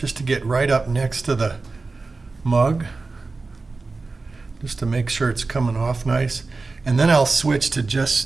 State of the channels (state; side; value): quieter; left; 3.8 dB